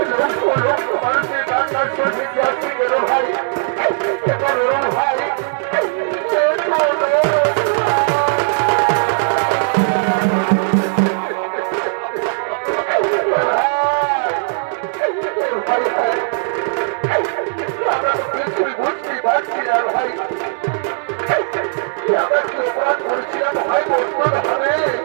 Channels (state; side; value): silent; left; 67 dB below the other